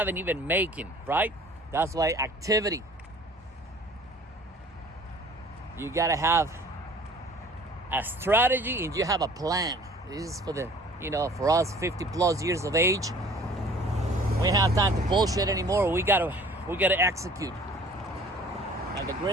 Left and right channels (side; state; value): both; normal; correlation 0.50